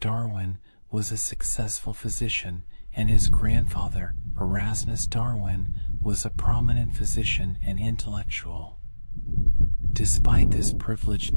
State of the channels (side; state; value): both; inverted; correlation -1.00